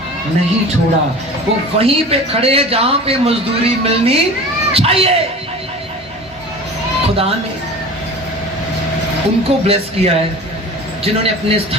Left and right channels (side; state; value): both; normal; correlation 0.37